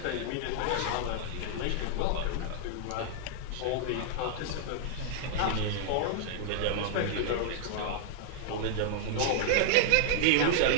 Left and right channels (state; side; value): different; both; correlation -0.01